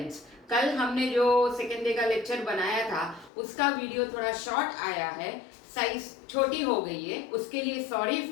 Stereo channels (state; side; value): drops out; right; at 3.3 s